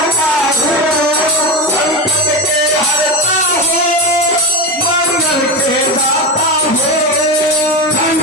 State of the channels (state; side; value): normal; both; correlation 0.18